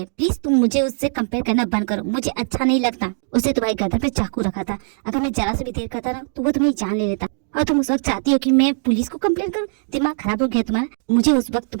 प्लीज तुम मुझे उससे कंपेयर करना बंद करो, मुझे अच्छा नहीं लगता। उसने तुम्हारी गर्दन पे चाकू रखा था, अगर मैं जरा से भी देर करता ना तो वो तुम्हें जान ले लेता। और तुम उस वक्त चाहती हो कि मैं पुलिस को कंप्लेंट करूं? दिमाग खराब हो गया तुम्हारा। मुझे उस वक्त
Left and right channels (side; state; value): left; silent; 65 dB below the other